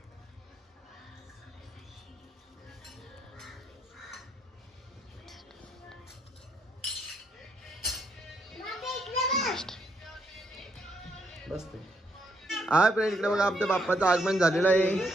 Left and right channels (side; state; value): both; normal; correlation 0.75